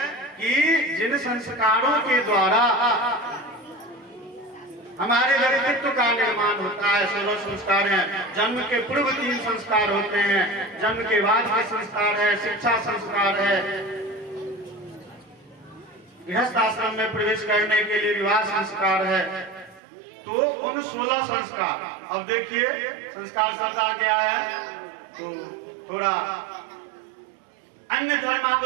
कि जिन संस्कारों के द्वारा हमारे व्यक्तित्व का निर्माण होता है, 16 संस्कार हैं। जन्म के पूर्व 3 संस्कार होते हैं, जन्म के बाद के संस्कार है, शिक्षा संस्कार है, गृहस्थ आश्रम में प्रवेश करने के लिए विवाह संस्कार है। तो उन 16 संस्कार, अब देखिए संस्कार शब्द आ गया है तो थोड़ा अन्य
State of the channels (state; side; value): drops out; left; at 19.8 s